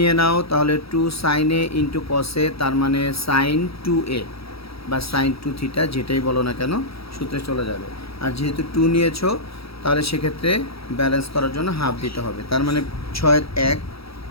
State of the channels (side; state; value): right; late; 0.76 ms